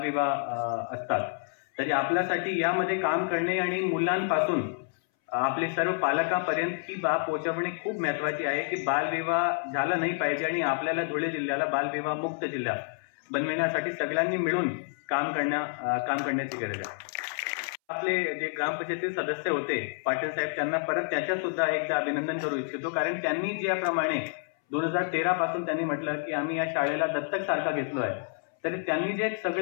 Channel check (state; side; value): silent; right; 59 dB below the other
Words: असतात. तरी आपल्यासाठी यामध्ये काम करणे आणि मुलांपासून आपले सर्व पालकांपर्यंत ही बाब पोहोचवणे खूप महत्वाची आहे की बालविवाह झाला नाही पाहिजे. आणि आपल्याला धुळे जिल्ह्याला बालविवाह मुक्त जिल्हा बनविण्यासाठी सगळ्यांनी मिळून काम करण्याची गरज आहे. आपले जे ग्रामपंचायतीचे सदस्य होते पाटील साहेब, त्यांना परत त्याच्या सुद्धा एकदा अभिनंदन करू इच्छितो. कारण त्यांनी ज्याप्रमाणे 2013 पासून त्यांनी म्हटलं की आम्ही या शाळेला दत्तक सारखा घेतलो आहे, तरी त्यांनी जे